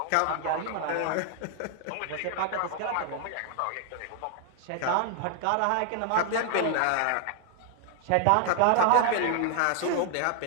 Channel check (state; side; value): different; both; correlation 0.00